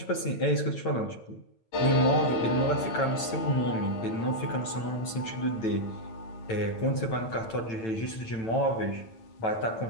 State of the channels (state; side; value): late; right; 9.0 ms